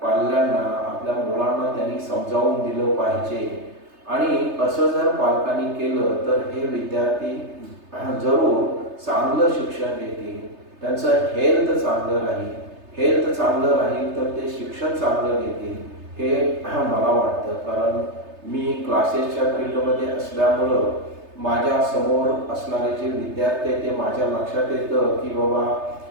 पाल्यांना, आपल्या मुलांना त्यांनी समजावून दिलं पाहिजे. आणि असं जर पालकांनी केलं तर हे विद्यार्थी जरूर चांगलं शिक्षण घेतील, त्यांचं हेल्थ चांगलं राहील तर ते शिक्षण चांगलं घेतील. हे मला वाटतं. कारण मी क्लासेसच्या फील्डमध्ये असल्यामुळं माझ्या समोर असणारे जे विद्यार्थी आहेत ते माझ्या लक्षात येतं की बाबा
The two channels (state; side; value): late; left; 3.3 ms